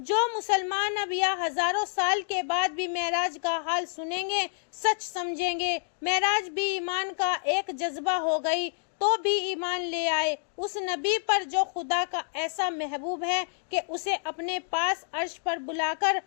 مسلمان اب یا ہزاروں سال کے بعد بھی معراج کا حال سنیں گے، سچ سمجھیں گے۔ معراج بھی ایمان کا ایک جذبہ ہو گئی تو بھی ایمان لے آئے اس نبی پر جو خدا کا ایسا محبوب ہے کہ اسے اپنے پاس عرش پر بلا کر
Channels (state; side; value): silent; right; digital silence